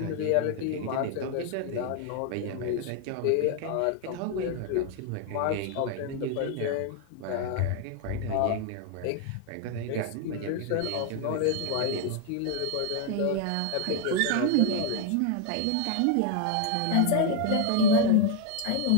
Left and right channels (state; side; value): different; both; correlation 0.00